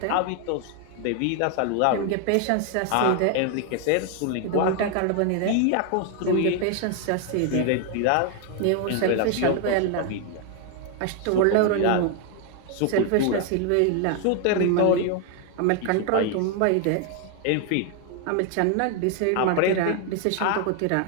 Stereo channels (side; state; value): both; different; correlation 0.00